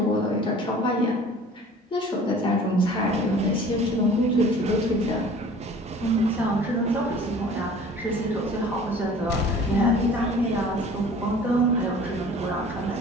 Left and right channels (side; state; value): both; normal; correlation 0.47